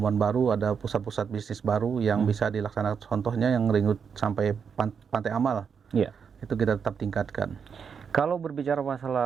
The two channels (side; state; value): left; quieter; 6.6 dB